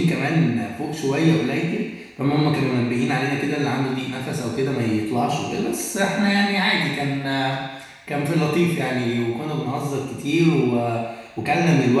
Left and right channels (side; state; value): both; identical; correlation 1.00